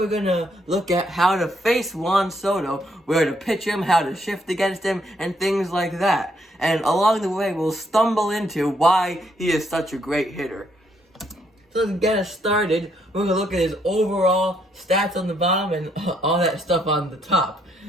going to look at how to face Juan Soto, where to pitch him, how to shift against him, and things like that. And along the way, we'll stumble into why he is such a great hitter. So to get us started, we're going to look at his overall stats on the bottom and all that stuff on the top.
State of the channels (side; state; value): both; normal; correlation 0.72